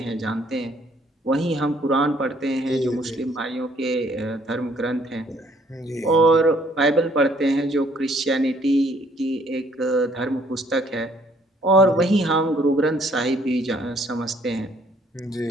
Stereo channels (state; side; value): normal; both; correlation 0.63